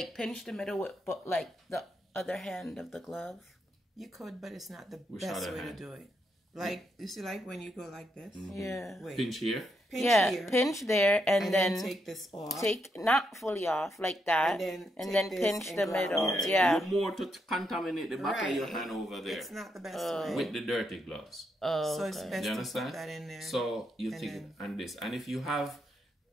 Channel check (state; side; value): normal; both; correlation 0.80